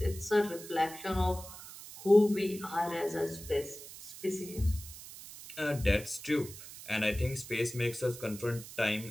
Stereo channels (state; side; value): noise; right; hiss, 14 dB below the sound